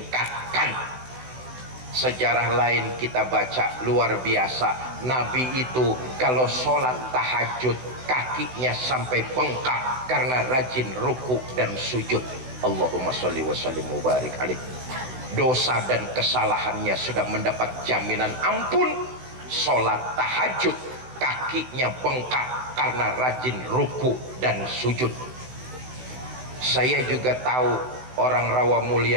Sejarah lain kita baca luar biasa. Nabi itu kalau sholat tahajud kakinya sampai bengkak karena rajin ruku dan sujud. Allahumma sholli wa sallim mubarik alaih. Dosa dan kesalahannya sudah mendapat jaminan ampun. Sholat tahajud kakinya bengkak karena rajin ruku dan sujud. Saya juga tahu orang rawa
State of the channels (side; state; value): left; late; 16 ms